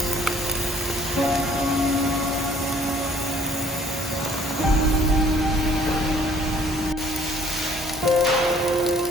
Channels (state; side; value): normal; both; correlation 0.58